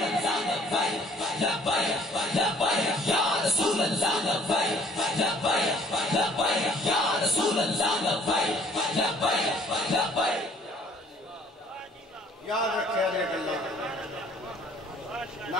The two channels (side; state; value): both; normal; correlation 0.57